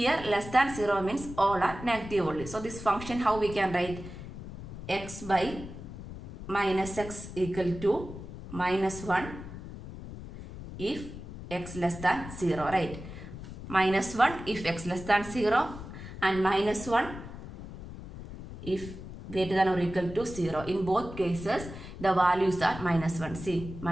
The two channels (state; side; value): noise; left; rumble, 11 dB below the sound